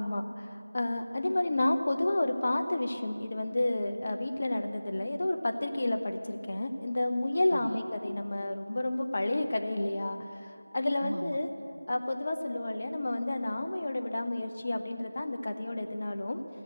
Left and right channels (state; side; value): inverted; both; correlation -0.98